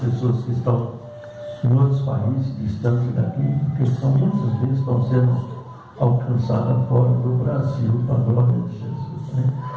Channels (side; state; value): both; identical; correlation 1.00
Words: que estão em outros países distantes daqui, porque são muitas vezes estão sendo alcançadas fora do Brasil, para a glória de Jesus. Né?